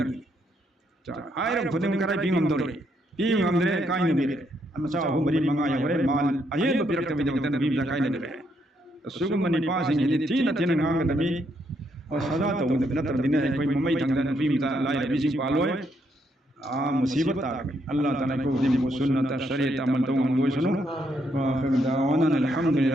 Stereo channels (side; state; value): both; normal; correlation 0.75